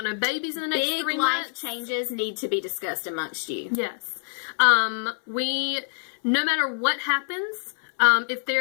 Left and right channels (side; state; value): right; silent; 58 dB below the other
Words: no babies in the next 3 months. Big life changes need to be discussed amongst you. Yes. No matter what happens, if